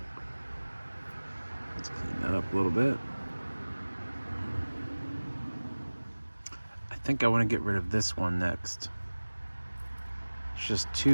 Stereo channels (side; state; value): both; inverted; correlation -1.00